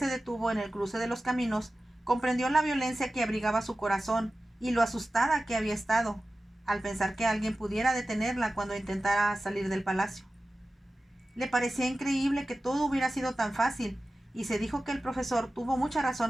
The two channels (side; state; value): both; normal; correlation 0.95